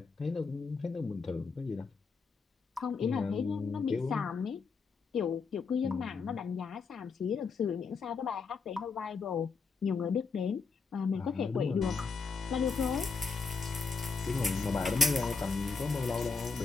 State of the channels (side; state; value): right; quieter; 4.8 dB